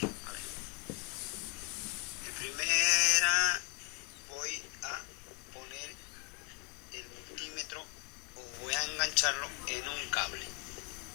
ver, en primera voy a poner el multímetro, o voy a engancharlo en un cable.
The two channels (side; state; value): right; quieter; 29.9 dB